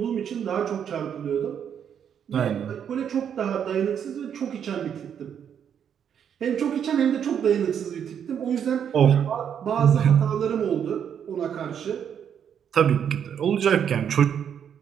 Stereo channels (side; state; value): left; quieter; 8.4 dB